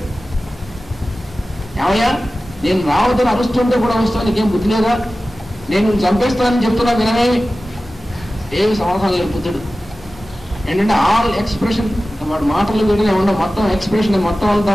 ఏమయ్యా నేను రావద్దని అరుస్తుంటే కూడా వస్తాను, నీకేం బుద్ధి లేదా, నేను చంపేస్తానని చెప్తున్నా వినమేమి, ఏమి సమాధానం లేదు బుద్ధుడు. ఏంటంటే ఆల్ ఎక్స్ప్రెషన్, వాడు మాటలు వీడినే ఉండవు, మొత్తం ఎక్స్ప్రెషన్ మొత్తం అంతా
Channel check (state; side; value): normal; both; correlation 0.96